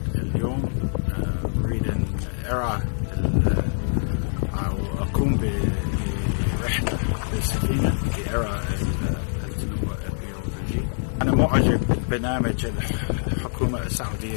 اليوم أريد أن أرى أو أقوم برحلة بالسفينة لأرى التنوع البيولوجي. أنا معجب ببرنامج الحكومة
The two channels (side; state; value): right; silent; digital silence